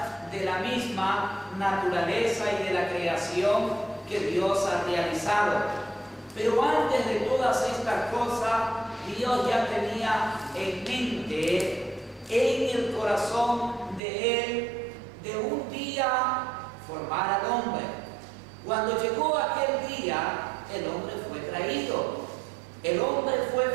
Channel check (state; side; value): drops out; left; at 14.0 s